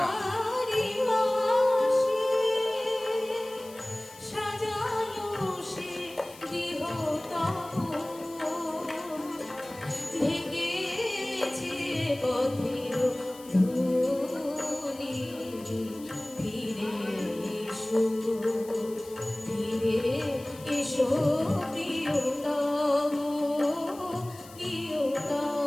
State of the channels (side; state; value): left; noise; hiss, 20 dB below the sound